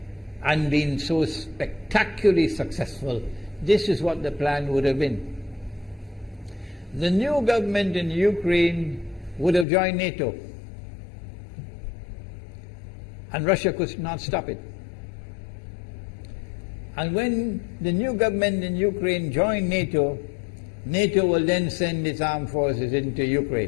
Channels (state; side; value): drops out; right; at 9.7 s